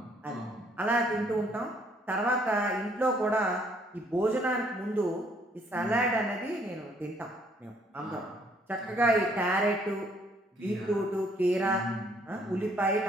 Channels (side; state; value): both; normal; correlation 0.65